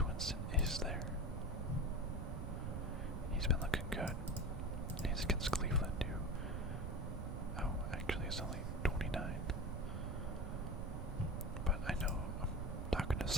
Winston is there. He's been looking good. He's against Cleveland too. Oh, actually it's only 29. But I know I'm talking to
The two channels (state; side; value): noise; right; rumble, 3 dB below the sound